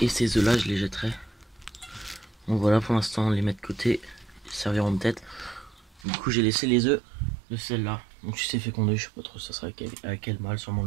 ces œufs là je les jetterai. Donc voilà, pour l'instant on les met de côté. Ils serviront de tête. Du coup j'ai laissé les œufs de celle-là. Donc si c'est fécondé, je sais pas trop ça sera avec quel mâle, sûrement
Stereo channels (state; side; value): drops out; left; at 6.1 s